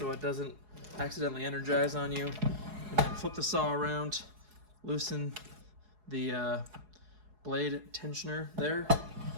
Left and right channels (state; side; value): late; left; 4.7 ms